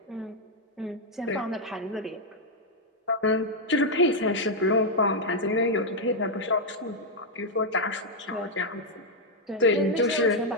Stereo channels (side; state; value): both; normal; correlation -0.01